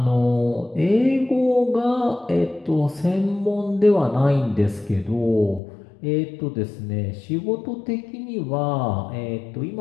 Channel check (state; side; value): drops out; right; at 5.6 s